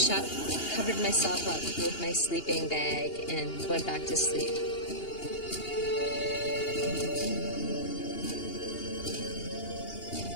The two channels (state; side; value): late; right; 2.8 ms